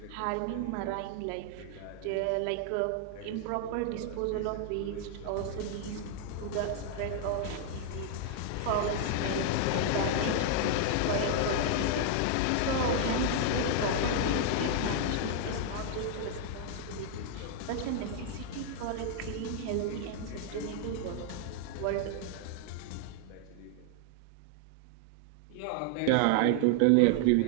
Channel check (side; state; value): both; different; correlation 0.00